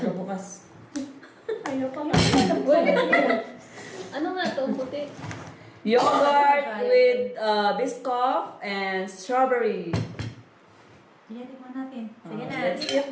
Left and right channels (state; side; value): identical; both; correlation 1.00